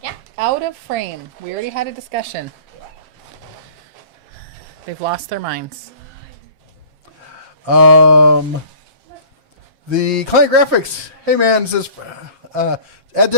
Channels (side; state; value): left; late; 7.4 ms